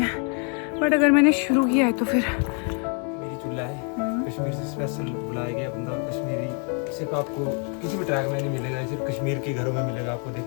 है, बट अगर मैंने शुरू किया है तो फिर मेरी चूल्हा है कश्मीर से स्पेशल बुलाया गया बंदा कश्मीरी, सिर्फ आपको किसी भी ट्रैक में नहीं मिलेगा, सिर्फ कश्मीर के घरों में मिलेगा आपको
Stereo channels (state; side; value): quieter; right; 39.6 dB